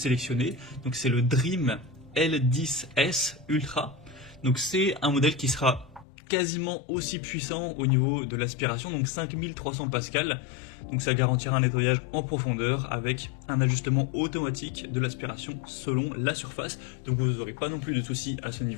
donc c'est le Dream L10S Ultra. Donc c'est un modèle qui sera quasiment aussi puissant au niveau de l'aspiration, donc 5300 pascal, donc ça garantira un nettoyage en profondeur avec un ajustement automatique de l'aspiration selon la surface, donc vous n'aurez pas non plus de soucis à ce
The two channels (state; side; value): drops out; right; at 6.1 s